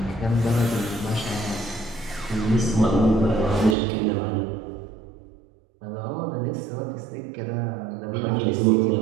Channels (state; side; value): drops out; left; at 3.8 s